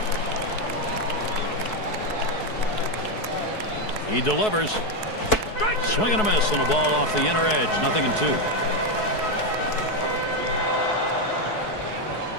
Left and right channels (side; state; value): right; late; 4.7 ms